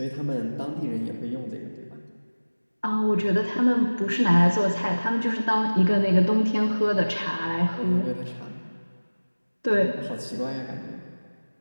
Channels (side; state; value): both; inverted; correlation -1.00